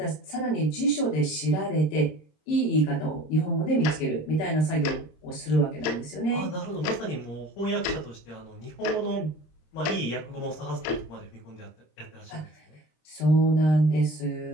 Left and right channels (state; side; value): late; right; 26 ms